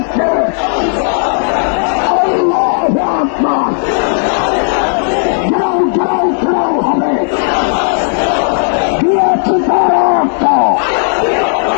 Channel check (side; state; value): right; silent; digital silence